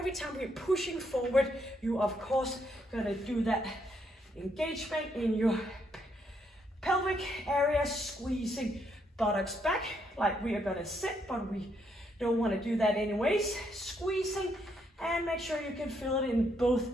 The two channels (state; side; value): normal; both; correlation 0.75